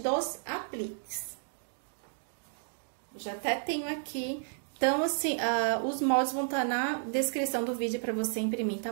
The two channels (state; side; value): silent; left; digital silence